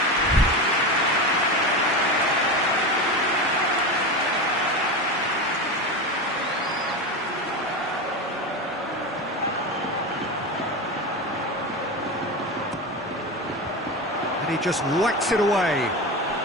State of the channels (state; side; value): normal; both; correlation 0.22